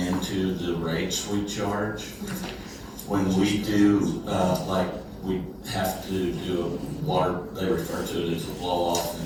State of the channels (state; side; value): identical; both; correlation 1.00